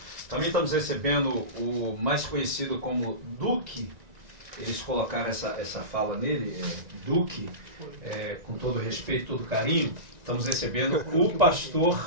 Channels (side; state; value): left; late; 1.9 ms